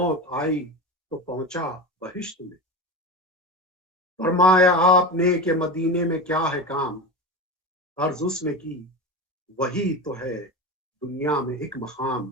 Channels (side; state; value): both; normal; correlation 0.25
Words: آئی تو پہنچا بہشت میں، فرمایا آپ نے کہ مدینے میں کیا ہے کام، عرض اس نے کی وہی تو ہے دنیا میں ایک مقام،